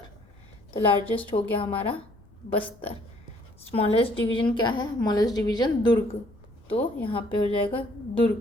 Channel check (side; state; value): left; noise; rumble, 26 dB below the sound